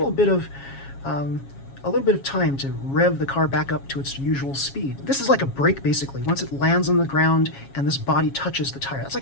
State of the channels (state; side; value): late; right; 7.3 ms